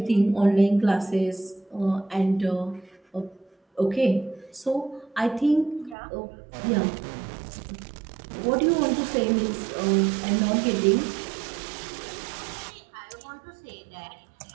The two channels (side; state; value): left; drops out; at 6.0 s